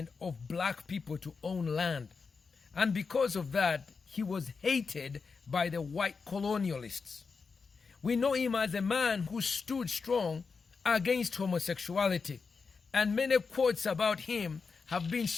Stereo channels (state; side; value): quieter; right; 5.0 dB